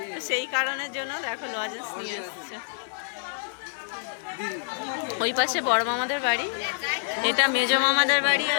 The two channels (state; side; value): silent; right; digital silence